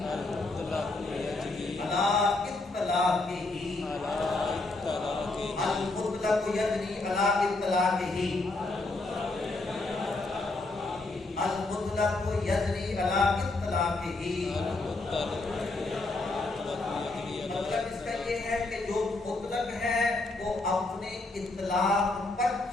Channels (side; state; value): right; quieter; 3.1 dB